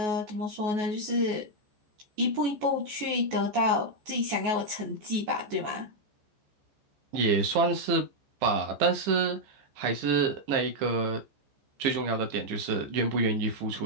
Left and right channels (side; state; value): left; late; 14 ms